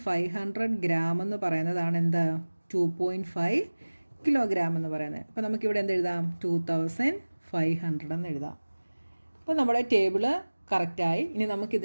ഗ്രാം എന്ന് പറയുന്നതാണ് എന്ത്? 2.5 കിലോഗ്രാം എന്ന് പറയുന്നത്. അപ്പോൾ നമുക്കിവിടെ എന്ത് എഴുതാം? 2500 എന്ന് എഴുതാം. അപ്പോൾ നമ്മുടെ ടേബിള് കറക്റ്റായി. ഇനി നമുക്ക്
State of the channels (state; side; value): inverted; both; correlation -1.00